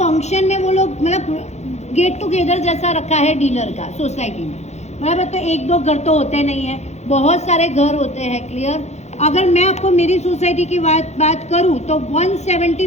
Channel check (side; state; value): right; late; 0.32 ms